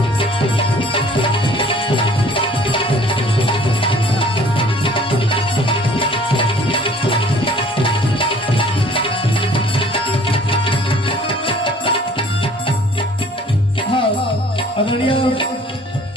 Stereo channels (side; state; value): both; normal; correlation 0.53